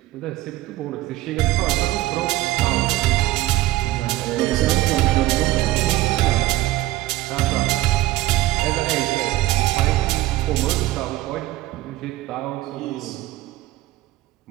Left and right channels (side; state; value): left; quieter; 16.8 dB